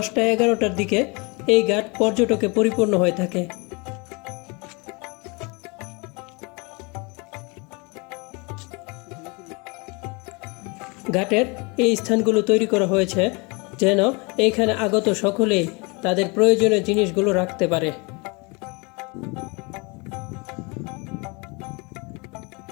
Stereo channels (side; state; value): right; quieter; 29.2 dB